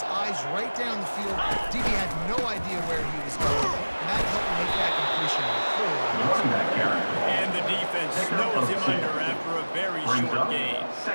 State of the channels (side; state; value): both; inverted; correlation -1.00